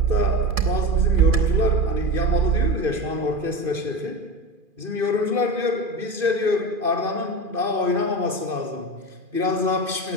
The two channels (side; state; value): left; late; 2.4 ms